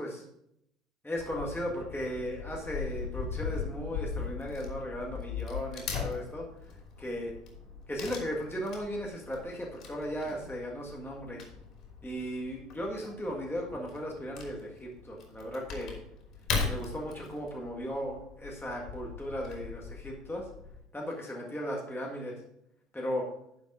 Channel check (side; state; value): both; normal; correlation 0.58